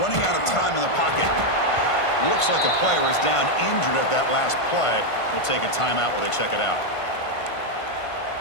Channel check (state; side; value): late; right; 1.5 ms